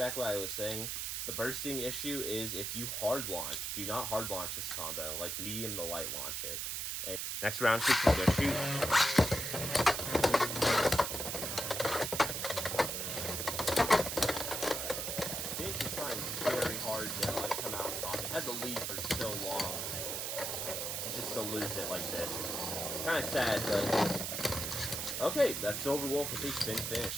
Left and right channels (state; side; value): noise; right; hiss, 2 dB below the sound